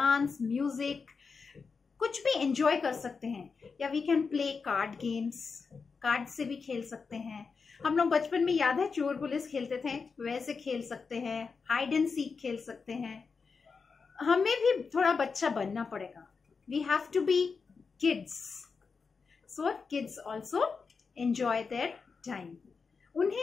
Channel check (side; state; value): right; quieter; 5.1 dB